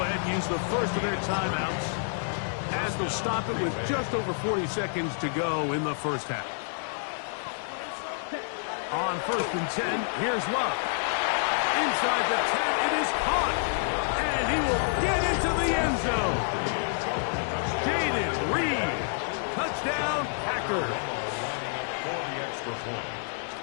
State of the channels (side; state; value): right; silent; digital silence